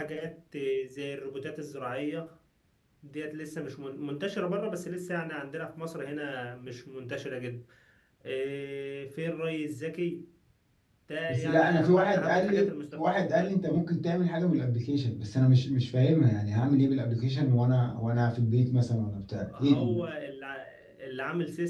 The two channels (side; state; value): both; identical; correlation 1.00